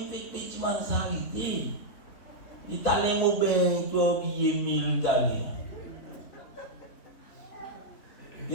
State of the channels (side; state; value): right; late; 3.6 ms